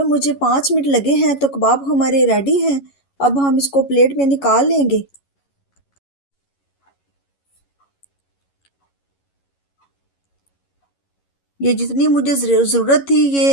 मुझे 5 मिनट लगे हैं। तो कबाब हमारे रेडी हैं। अब हम इसको प्लेट में निकाल लेंगे। ये जितनी मुझे ज़रूरत थी,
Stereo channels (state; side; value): late; right; 11 ms